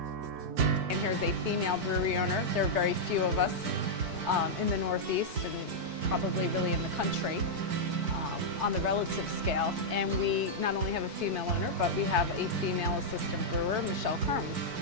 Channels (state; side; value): late; left; 4.6 ms